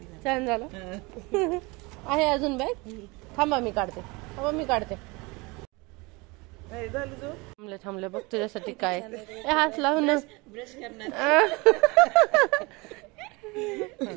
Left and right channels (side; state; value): left; quieter; 25.7 dB